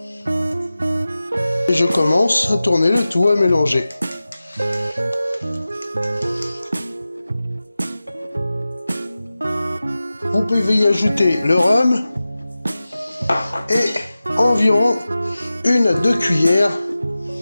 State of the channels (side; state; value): both; inverted; correlation -0.95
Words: et je commence à tourner le tout, à mélanger. Vous pouvez y ajouter le rhum et environ 1 à 2 cuillères,